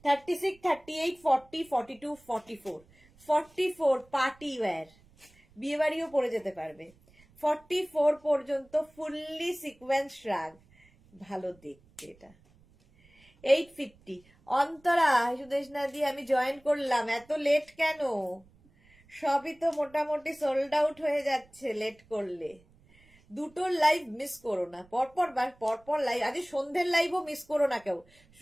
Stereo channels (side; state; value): right; noise; rumble, 29 dB below the sound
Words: 36, 38, 40, 42, 44, 44 পার্টি ওয়্যার, বিয়ে বাড়িও পরে যেতে পারবে। 44 পর্যন্ত ফুললি সিকোয়েন্স শ্রাগ, ভালো দেখতে। এটা 850। অন্তরা সুদেশ না দিয়ে আমি জয়েন করলাম, এত লেট কেন? সবই তো মোটামুটি সোল্ড আউট হয়ে যাচ্ছে লেট করলে। দুটোর লাইভ মিস করো না, পরপর লাইভ, আজ সন্ধ্যের লাইভও মিস করো না কেউ।